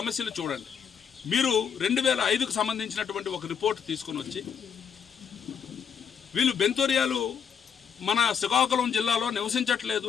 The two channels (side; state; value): right; quieter; 7.4 dB